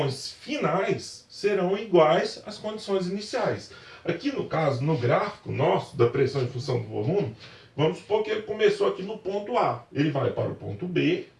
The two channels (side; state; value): both; identical; correlation 1.00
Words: finais serão iguais às condições iniciais. Aqui no caso, no gráfico nosso da pressão em função do volume, vamos supor que ele começou aqui no ponto A. Ele vai para o ponto B,